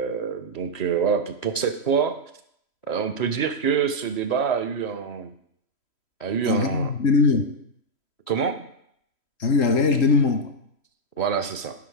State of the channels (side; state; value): right; late; 3.1 ms